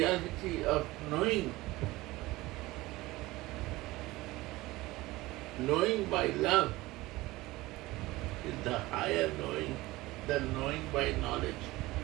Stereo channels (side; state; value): left; quieter; 19.4 dB